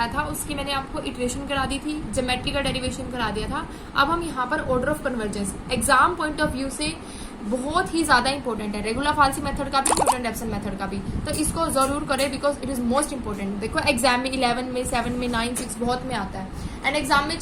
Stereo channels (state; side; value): identical; both; correlation 1.00